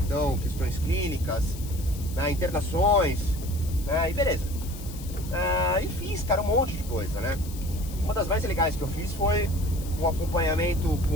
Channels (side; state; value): left; noise; hiss, 16 dB below the sound